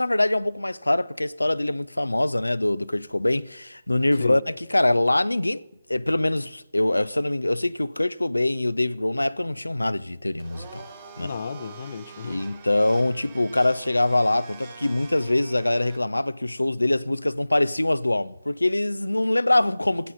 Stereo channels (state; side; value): inverted; both; correlation -0.99